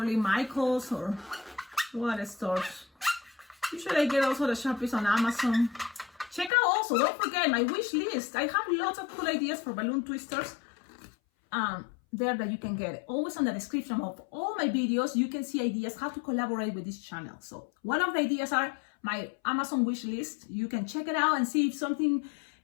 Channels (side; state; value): right; drops out; at 6.5 s